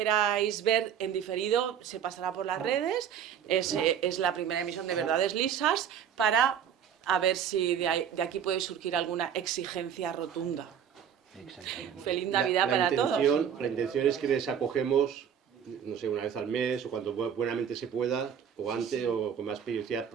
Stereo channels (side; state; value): left; quieter; 8.6 dB